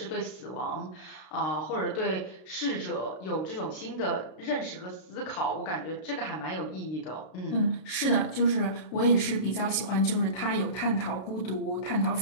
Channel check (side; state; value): right; late; 32 ms